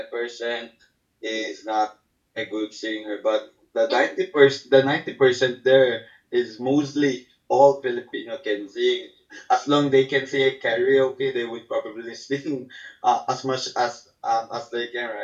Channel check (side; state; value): both; identical; correlation 1.00